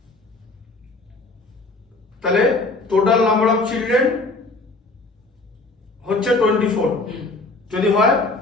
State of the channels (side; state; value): right; quieter; 3.2 dB